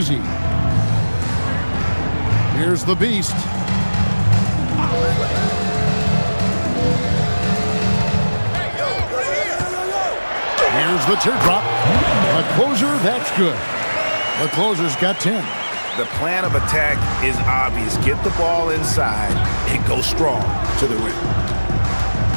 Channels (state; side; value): inverted; both; correlation -1.00